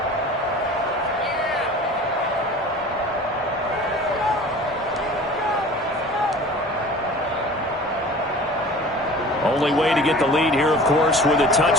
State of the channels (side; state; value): both; normal; correlation 0.42